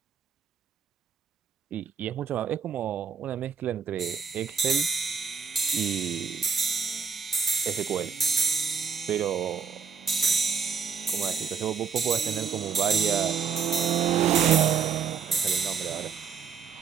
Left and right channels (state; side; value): quieter; left; 6.4 dB